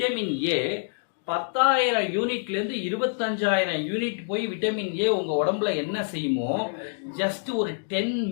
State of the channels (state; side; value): silent; right; digital silence